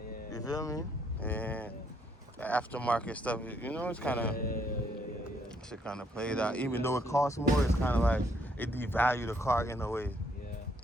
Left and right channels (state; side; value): normal; both; correlation 0.70